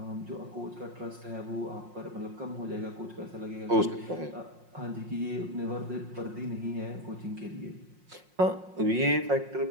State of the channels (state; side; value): late; left; 5.6 ms